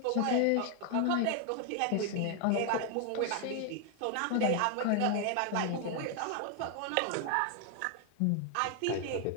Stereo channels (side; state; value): both; different; correlation 0.00